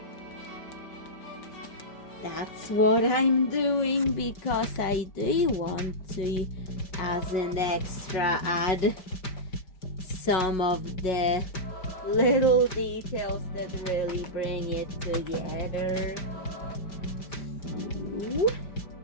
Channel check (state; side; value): late; right; 5.1 ms